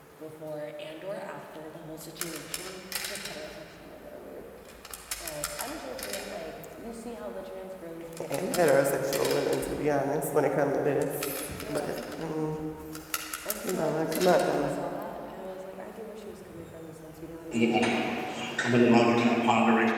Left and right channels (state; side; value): identical; both; correlation 1.00